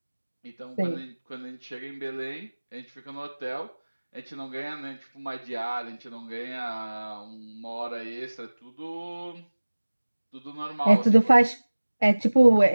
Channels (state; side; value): inverted; both; correlation -1.00